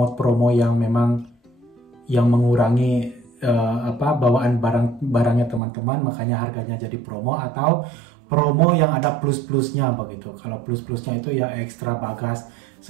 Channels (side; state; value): left; drops out; at 5.6 s